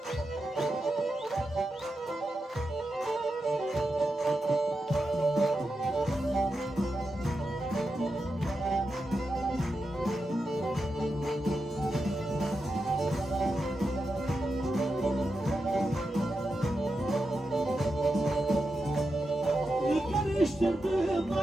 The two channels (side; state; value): both; normal; correlation 0.88